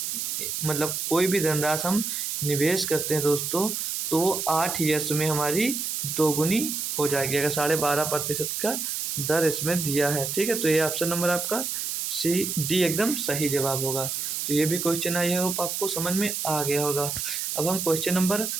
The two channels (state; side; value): noise; right; hiss, 2 dB below the sound